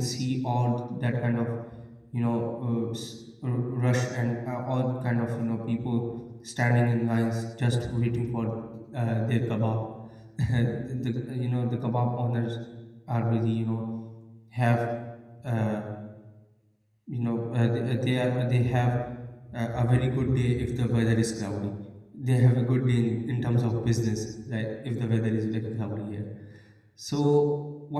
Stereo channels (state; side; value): identical; both; correlation 1.00